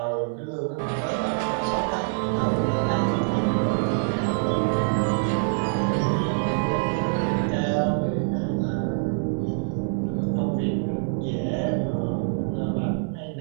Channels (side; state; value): left; silent; 59 dB below the other